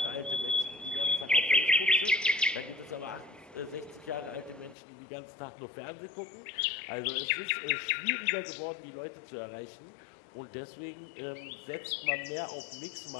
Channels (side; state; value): right; drops out; at 4.8 s